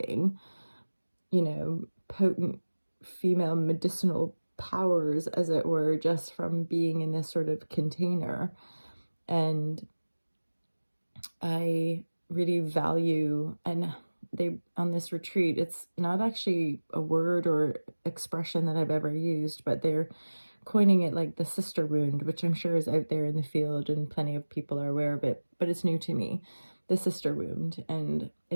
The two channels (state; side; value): inverted; both; correlation -1.00